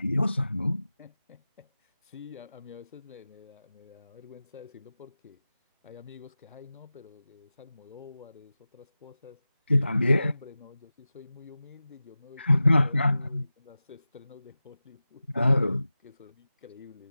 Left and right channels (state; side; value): inverted; both; correlation -0.95